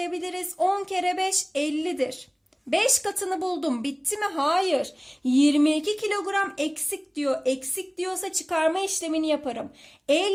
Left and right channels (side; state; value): both; identical; correlation 1.00